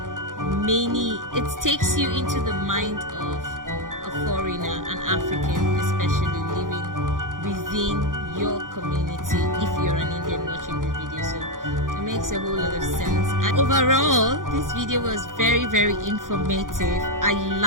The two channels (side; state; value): left; late; 0.89 ms